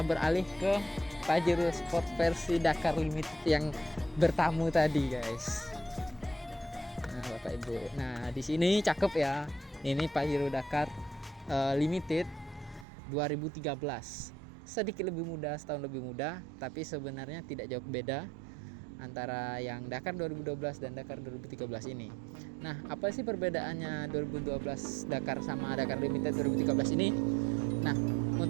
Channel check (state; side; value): drops out; left; at 12.9 s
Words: beralih ke Pajero Sport versi Dakar Limited yang bertamu tadi, guys. Nah, Bapak Ibu. Nah, di sini cakep ya. Ini Pajero Dakar Limited 2013. Sedikit lebih muda, setahun lebih muda, tapi sebenarnya tidak jauh beda antara yang Dakar 2012 dan Dakar 2013 ini. Nah, apa sih perbedaannya 2012 Dakar sama Dakar Limited 2013 ini? Nah,